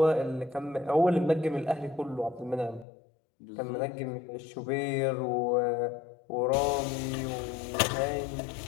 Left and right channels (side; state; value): right; drops out; at 2.9 s